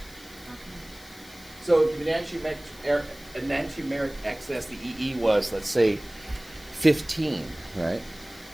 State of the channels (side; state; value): left; noise; hiss, 20 dB below the sound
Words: So if the enantiomeric excess, the EE was, let's say, 15, right?